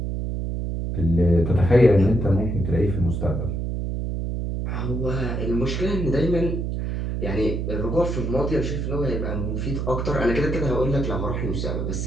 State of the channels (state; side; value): noise; right; hum, 2 dB below the sound